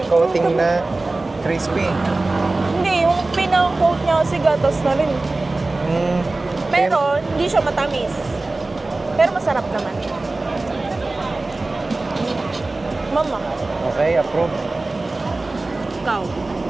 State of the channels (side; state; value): left; quieter; 3.2 dB